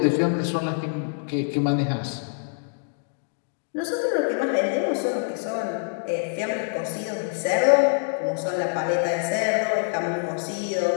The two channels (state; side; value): silent; right; digital silence